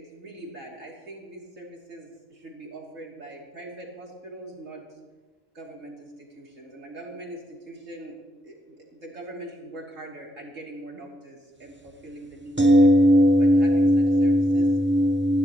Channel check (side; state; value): both; normal; correlation 0.79